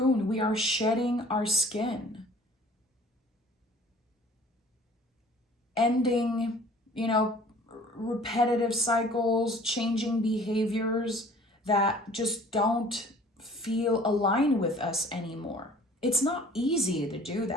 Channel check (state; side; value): normal; both; correlation 0.50